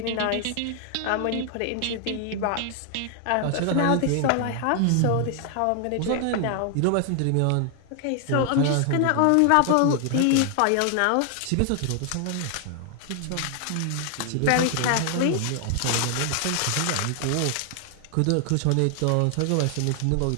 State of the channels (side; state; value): both; different; correlation 0.00